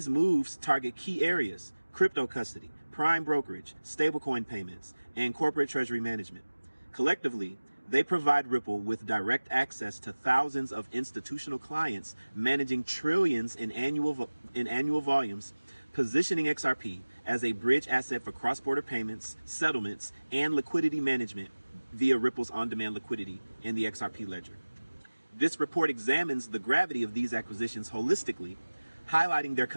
moves target key areas: crypto custody, prime brokerage, stablecoin payments, and corporate treasury management. Collectively, they provide Ripple with direct access to thousands of institutional clients managing trillions in annual volumes, positioning XRP as a bridge asset for cross-border payments, settlements, and liquidity management via Ripple's on-demand liquidity in the XRP ledger. This report examines the gravity of these acquisitions holistically, highlighting their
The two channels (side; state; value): both; inverted; correlation -1.00